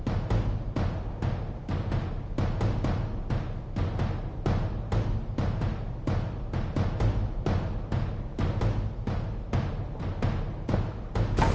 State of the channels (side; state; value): both; identical; correlation 1.00